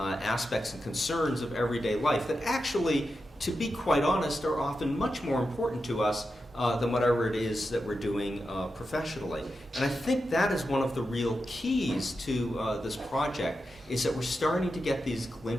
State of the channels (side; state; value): both; normal; correlation 0.89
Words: and concerns of everyday life that actually, to be quite honest, are often much more important to us than whatever it is that we're doing professionally. And I think that is one of the real keys to this project, is that we're starting to get these